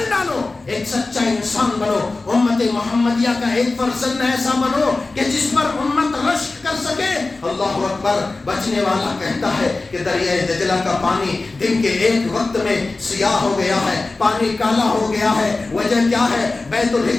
ڈالو، ایک سچا انسان بنو، امت محمدیہ کا ایک فرزند ایسا بنو کہ جس پر امت رشک کر سکے۔ اللہ اکبر! بچنے والا کہتا ہے کہ دریائے دجلہ کا پانی دن کے ایک وقت میں سیاہ ہو گیا ہے، پانی کالا ہو گیا ہے۔ وجہ کیا ہے؟ بیت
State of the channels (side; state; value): right; quieter; 3.4 dB